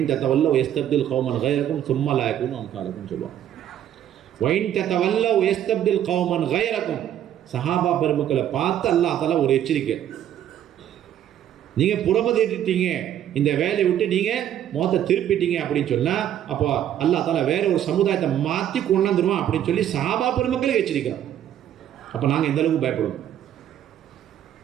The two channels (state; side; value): quieter; left; 10.8 dB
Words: தத்தவல்ல யஸ்தப்தில் கௌமன் கைரக்கும் சும்மா லா யகூனு அம்சாலக்கும் சொல்லுவாங்க. வைன் தத்தவல்ல யஸ்தப்தில் கௌமன் கைரக்கும், சஹாபா பெருமக்களை பார்த்து அல்லாஹ் தஆலா ஒரு எச்சரிக்கை, நீங்கள் புறமதிட்டீங்க, இந்த வேலையை விட்டு நீங்கள் முகத்தை திருப்பிட்டீங்க அப்படின்னு சொன்னால் அப்போ அல்லாஹ் தஆலா வேற ஒரு சமுதாயத்தை மாற்றி கொண்டாந்துருவான் அப்படின்னு சொல்லி சஹாபா பெருமக்களை எச்சரிக்கிறோம். அப்போ நாங்கள் எந்த அளவுக்கு பயப்படுவோம்,